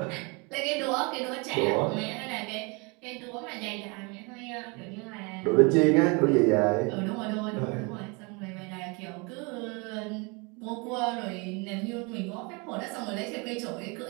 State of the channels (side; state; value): left; quieter; 29.9 dB